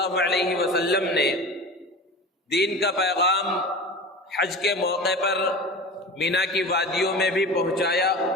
علیہ وسلم نے دین کا پیغام حج کے موقع پر مینا کی وادیوں میں بھی پہنچایا،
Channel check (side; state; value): both; normal; correlation 0.33